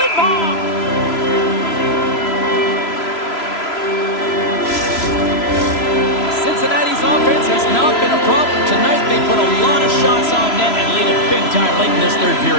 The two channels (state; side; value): late; right; 3.0 ms